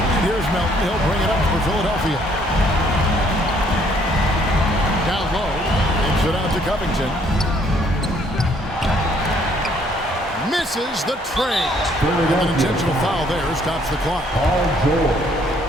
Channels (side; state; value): both; normal; correlation 0.64